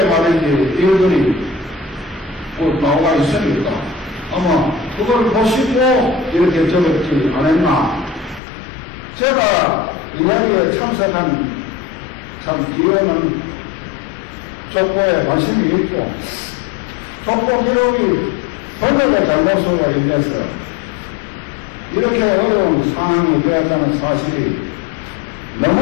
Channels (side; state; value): right; drops out; at 8.4 s